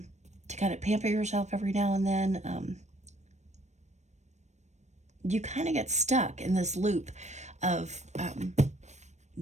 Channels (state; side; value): late; left; 0.34 ms